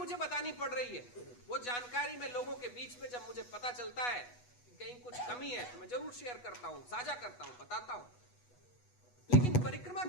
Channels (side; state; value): right; late; 8.2 ms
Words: बतानी पड़ रही है। वो जानकारी में लोगों के बीच में जब मुझे पता चलता है कि कहीं कुछ कमी है तो मैं जरूर शेयर करता हूं, साझा करता हूं, बताता हूं। लेकिन परिक्रमा